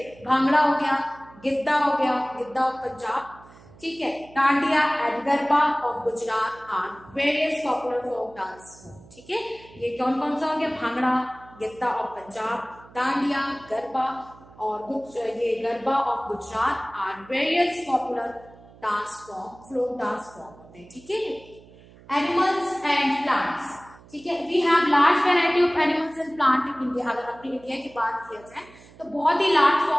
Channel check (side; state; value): right; noise; hum, 23 dB below the sound